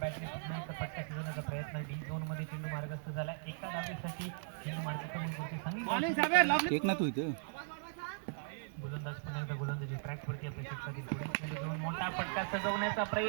पुन्हा एकदा फटका शिजवण्याचा प्रयत्न. डी झोन मध्ये चेंडू मार्गस्थ झालाय. एका धावेसाठी चेंडू मार्ग करून सांगितलं. गोलंदाज पुन्हा एकदा गोलंदाजी ट्रॅक वरती आपल्या क्षेत्रातील पुढील चेंडू घेऊन मोठा फटका सजवण्याचा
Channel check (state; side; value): silent; left; digital silence